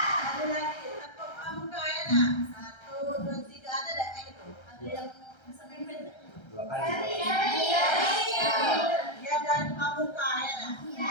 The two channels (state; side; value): late; right; 1.3 ms